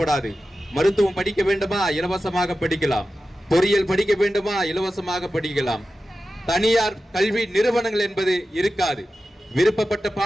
மருத்துவம் படிக்க வேண்டுமா, இலவசமாக படிக்கலாம். பொறியியல் படிக்க வேண்டுமா, இலவசமாக படிக்கலாம். தனியார் கல்வி நிறுவனங்கள் என்பது இருக்காது. விருப்பப்பட்ட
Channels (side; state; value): both; normal; correlation 0.93